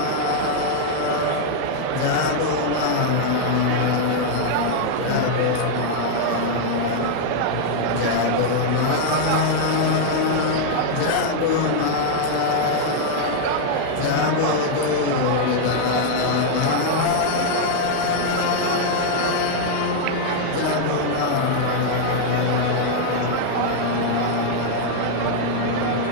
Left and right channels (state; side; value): different; both; correlation -0.01